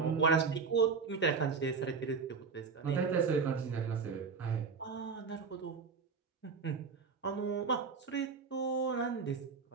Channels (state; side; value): quieter; left; 5.3 dB